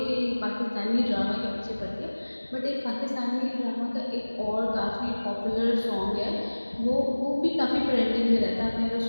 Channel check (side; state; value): both; inverted; correlation -1.00